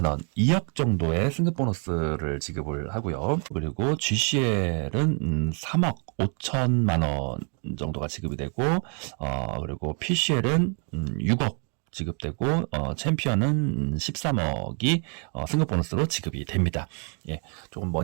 원, 2억 정도의 승급 보너스를 지급을 하고요. 그리고 GCL은 3억 5천만 원 정도가 지급이 되고, 그리고 PCL은 6억 지급되고, 챔피언은 13억이 승급 보너스로 지급이 됩니다. 예, 조금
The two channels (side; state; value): left; quieter; 40.0 dB